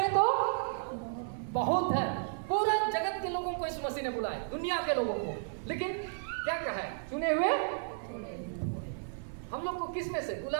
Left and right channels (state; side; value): silent; left; 56 dB below the other